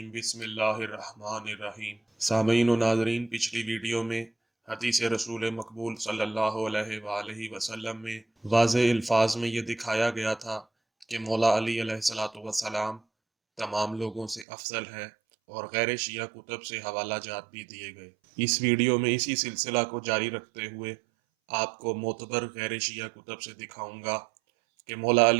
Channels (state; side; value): drops out; left; at 14.5 s